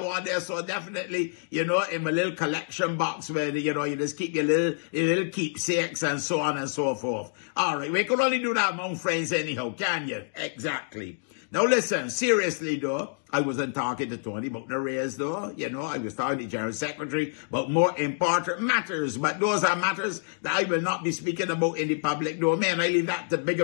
one there. So definitely, you know, in my little collection box where, you know, you just keep your little keepsakes and so on and so forth. All right. We could only do that among friends anyhow, can you? Exactly. Now listen, seriously though, I wasn't talking to Tony about the raise though. You know, I was talking to the General Secretary about more important matters. But those are matters that I will not be speaking about in the public domain. I leave that to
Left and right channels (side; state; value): right; silent; digital silence